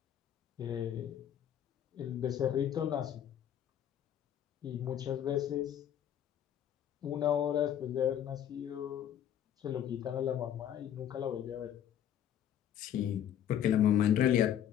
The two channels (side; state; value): right; quieter; 10.1 dB